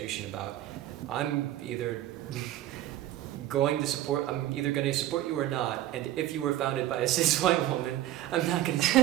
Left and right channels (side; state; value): left; quieter; 13.9 dB